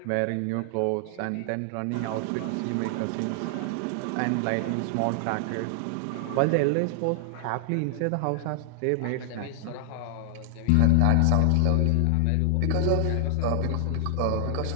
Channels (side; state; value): both; different; correlation 0.00